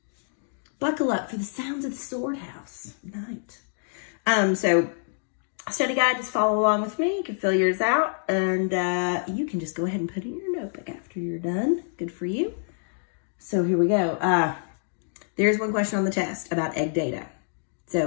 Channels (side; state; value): right; silent; digital silence